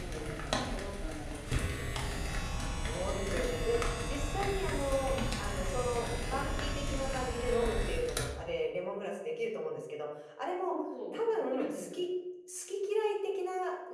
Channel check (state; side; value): identical; both; correlation 1.00